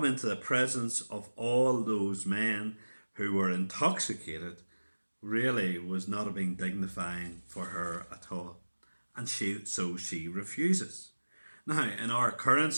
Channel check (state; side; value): inverted; both; correlation -1.00